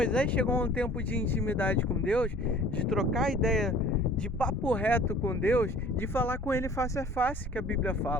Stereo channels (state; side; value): normal; both; correlation 0.49